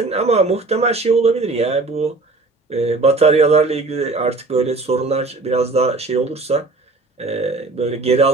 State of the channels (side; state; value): left; quieter; 3.5 dB